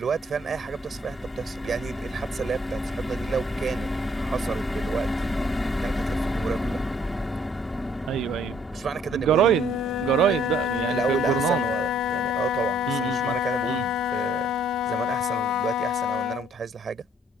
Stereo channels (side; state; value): both; normal; correlation 0.63